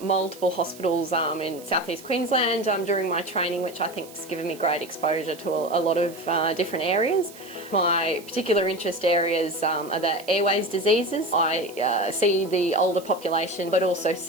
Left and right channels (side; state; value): right; noise; hiss, 20 dB below the sound